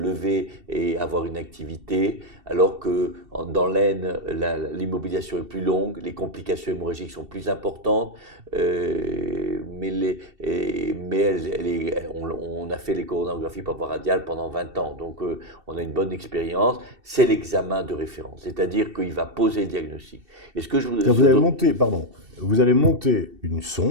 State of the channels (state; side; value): late; left; 2.7 ms